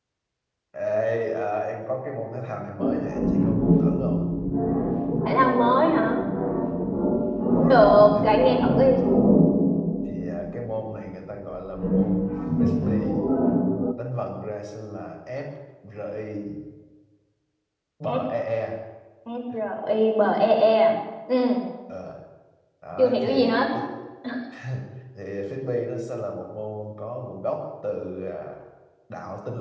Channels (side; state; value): both; identical; correlation 1.00